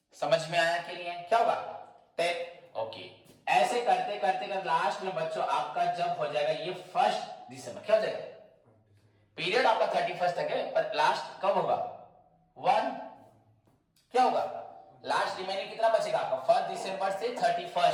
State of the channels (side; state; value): both; identical; correlation 1.00